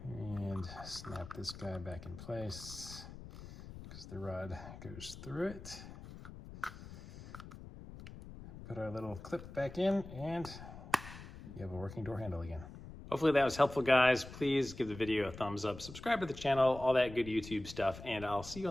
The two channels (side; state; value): left; noise; rumble, 14 dB below the sound